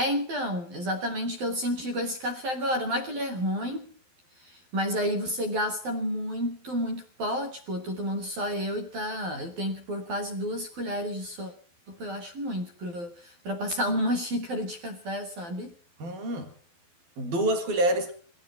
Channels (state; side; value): late; left; 12 ms